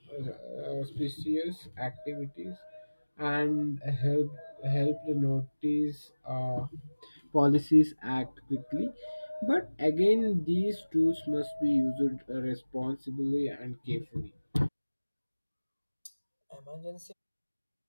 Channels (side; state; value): both; inverted; correlation -1.00